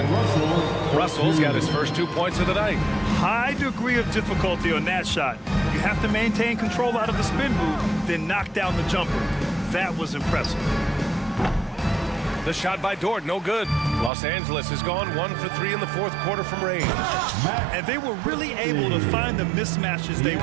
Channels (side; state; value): left; drops out; at 14.1 s